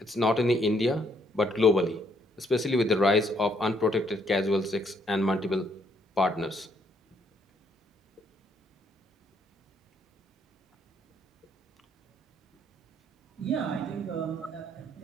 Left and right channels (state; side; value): normal; both; correlation 0.70